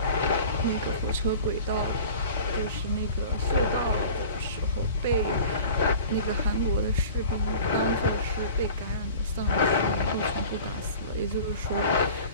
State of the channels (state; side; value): inverted; both; correlation -0.42